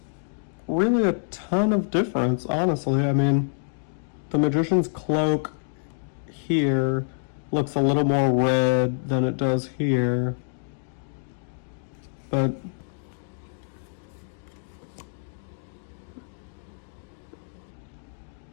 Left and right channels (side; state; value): right; silent; digital silence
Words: really a ton of difference, honestly. I mean, the Magician's Cloak here looks a little more red than it does here, but